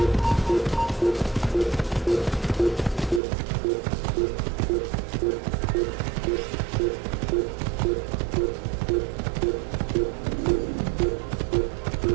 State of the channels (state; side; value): drops out; left; at 3.2 s